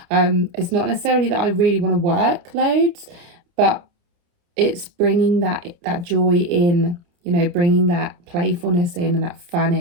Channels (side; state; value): left; late; 29 ms